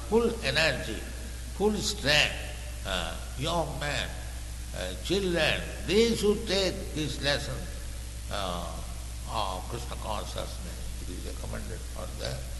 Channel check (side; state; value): both; identical; correlation 1.00